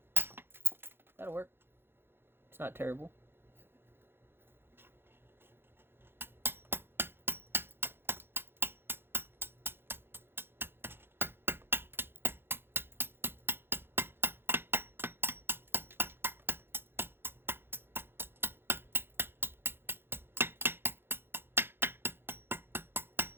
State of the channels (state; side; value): late; left; 0.11 ms